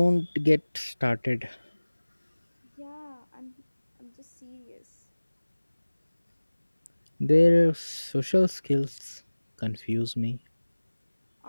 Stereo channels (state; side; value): inverted; both; correlation -1.00